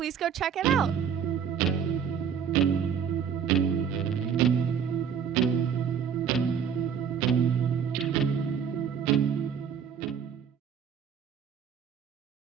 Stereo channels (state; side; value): quieter; left; 7.6 dB